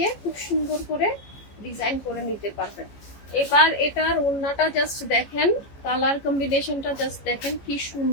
খুব সুন্দর করে ডিজাইন করে নিতে পারবেন। এবার এটার ওড়নাটা জাস্ট দেখেন, কালার কম্বিনেশনটা জাস্ট দেখেন কি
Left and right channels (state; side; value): late; right; 15 ms